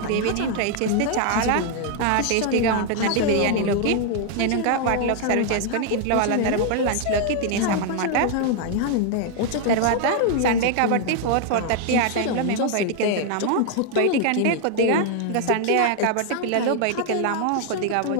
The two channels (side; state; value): both; different; correlation 0.00